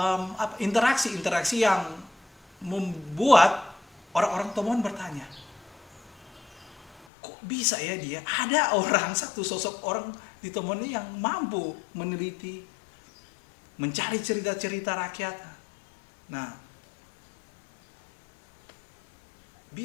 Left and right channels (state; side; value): drops out; right; at 7.1 s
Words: interaksi yang membuat orang-orang Tomohon bertanya, kok bisa ya dia ada satu sosok orang di Tomohon ini yang mampu meneliti, mencari cerita-cerita rakyat. Nah,